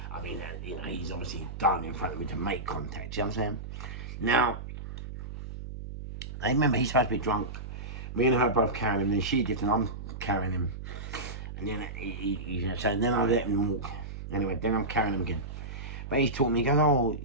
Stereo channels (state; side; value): noise; right; hum, 9 dB below the sound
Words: I mean, you know, he's obviously done in front of me to make contact, you know what I'm saying? Now, I remember he's supposed to be drunk. Me and her both carrying him, and she did, and I'm carrying him. And then so then I let him walk. Anyway, then I'm carrying him again. But he's taught me, he goes, oh,